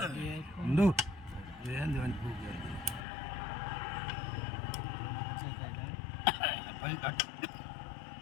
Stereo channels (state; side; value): drops out; right; at 3.1 s